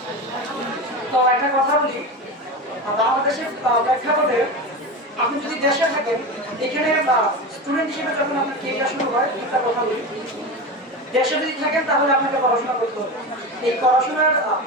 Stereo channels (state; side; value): normal; both; correlation 0.23